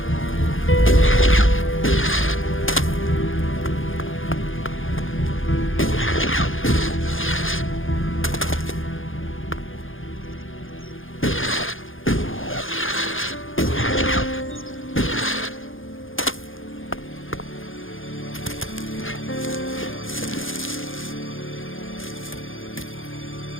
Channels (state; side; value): late; right; 0.58 ms